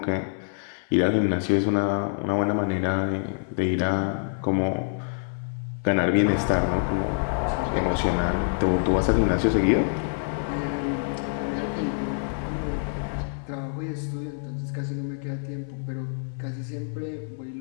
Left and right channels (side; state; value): right; silent; 58 dB below the other